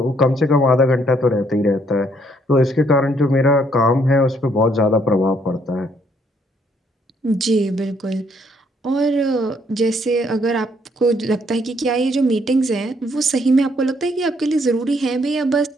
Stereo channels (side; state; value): both; normal; correlation 0.69